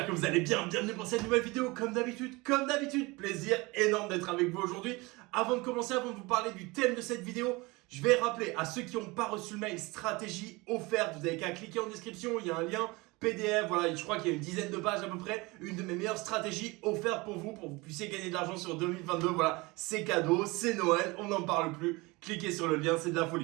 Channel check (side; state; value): left; quieter; 24.0 dB